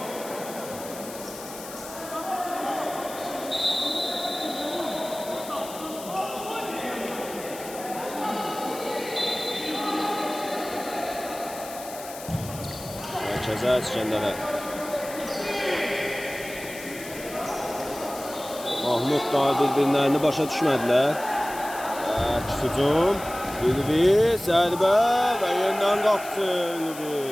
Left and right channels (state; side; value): noise; left; hiss, 13 dB below the sound